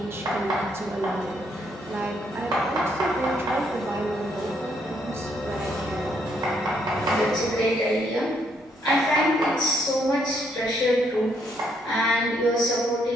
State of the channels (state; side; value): normal; both; correlation 0.72